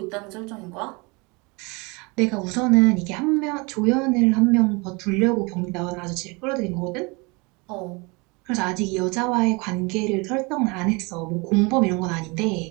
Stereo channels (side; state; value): left; quieter; 28.0 dB